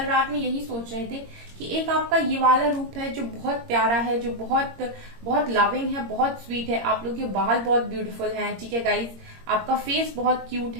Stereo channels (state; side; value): late; left; 21 ms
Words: रात में यही सोच रहे थे कि एक आपका ये वाला रूप है जो बहुत प्यारा है, जो बहुत बहुत लविंग है, बहुत स्वीट है। आप लोग के बाल बहुत ब्यूटीफुल हैं, ठीक है गाइस। आपका फेस बहुत क्यूट